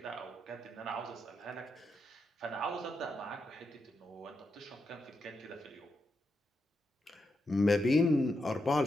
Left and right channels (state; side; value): normal; both; correlation 0.84